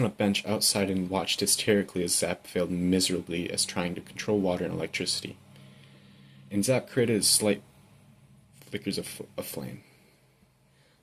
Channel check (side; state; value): both; identical; correlation 1.00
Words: a bench outside and watched hysterically as Zap failed miserably as trying to control water and electricity. And Zap created slight flickers of flame.